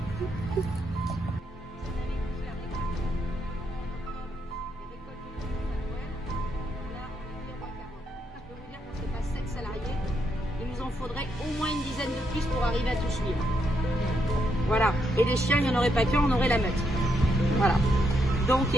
Faudrait au moins une dizaine de plus pour arriver à tout suivre. Voilà. Et les chiens, il n'y en aurait pas qu'un, on aurait la meute. Voilà. Donc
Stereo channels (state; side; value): normal; both; correlation 0.79